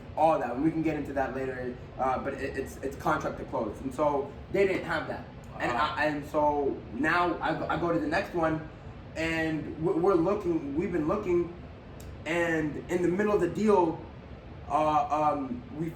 all that. And we can get into that later, but it's contract to close. And so they didn't have that. And so now I go to the next one, and we've been looking, and in the middle of the deal, in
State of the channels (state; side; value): identical; both; correlation 1.00